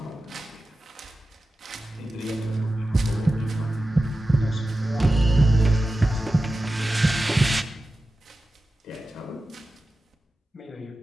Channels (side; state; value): both; normal; correlation 0.94